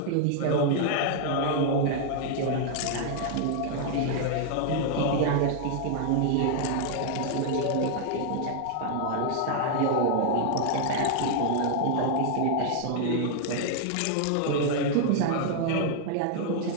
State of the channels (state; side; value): different; both; correlation 0.00